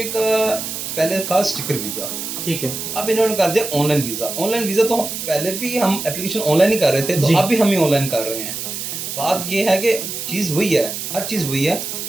کا پہلے تھا اسٹیکر ویزا، ٹھیک ہے. اب انہوں نے کر دیا on line visa. On line visa تو پہلے بھی ہم اپلیکیشن آن لائن ہی کر رہے تھے، تو اب بھی ہم ہی آن لائن کر رہے ہیں. بات یہ ہے کہ چیز وہی ہے، ہر چیز وہی ہے،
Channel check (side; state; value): right; noise; hiss, 6 dB below the sound